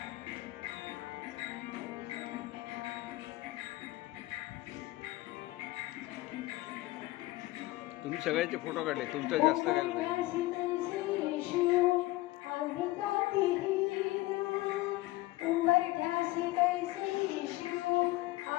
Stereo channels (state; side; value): quieter; right; 18.8 dB